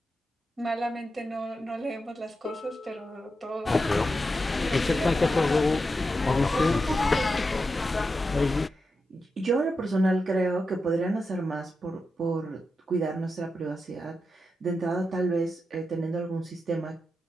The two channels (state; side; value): normal; both; correlation 0.88